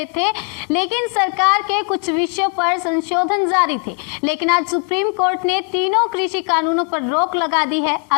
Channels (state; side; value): quieter; right; 38.4 dB